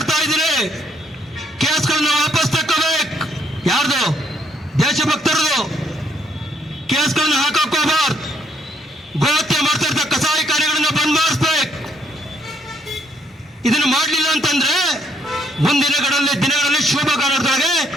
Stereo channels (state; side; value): normal; both; correlation 0.70